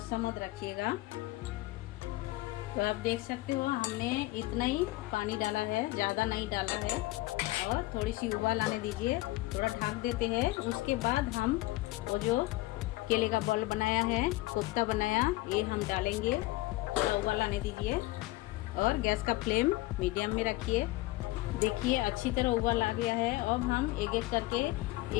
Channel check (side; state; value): right; quieter; 19.2 dB